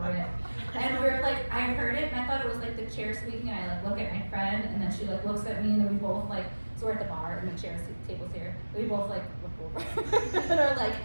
And we're like, I heard it and I thought it was like the chair squeaking, and I like look at my friend and then she like looks at me, and then we both like, so we're at the bar and the table's here. We both like look over and are like,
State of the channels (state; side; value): inverted; both; correlation -1.00